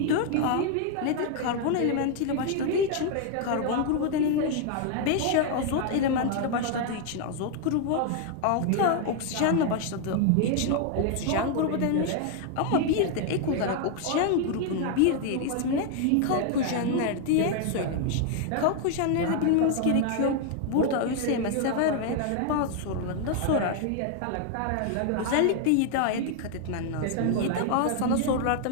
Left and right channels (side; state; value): both; different; correlation 0.00